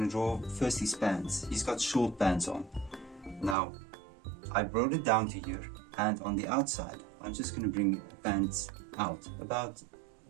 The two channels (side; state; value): left; drops out; at 3.6 s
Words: to draw first his pants. He's got short pants on. Now I brought it down to here, and on the outside I'm just going to bring pants out about